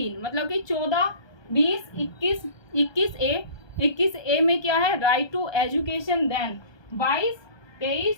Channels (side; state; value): right; late; 1.2 ms